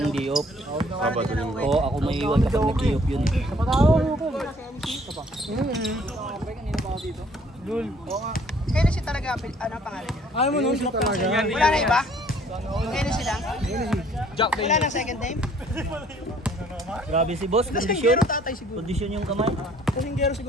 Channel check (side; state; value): both; normal; correlation 0.59